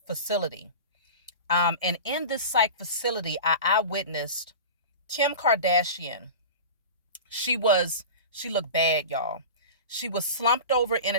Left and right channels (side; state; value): both; inverted; correlation -0.32